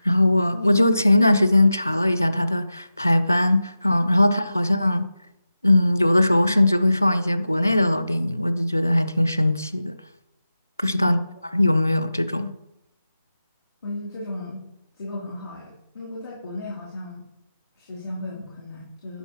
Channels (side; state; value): both; inverted; correlation -0.93